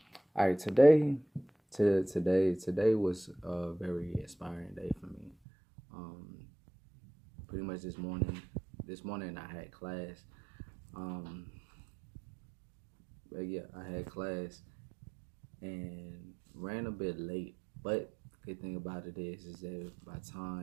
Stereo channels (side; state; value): left; drops out; at 5.4 s